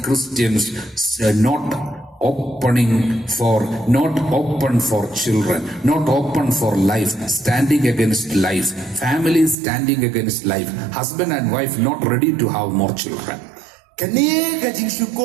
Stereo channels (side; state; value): left; drops out; at 9.6 s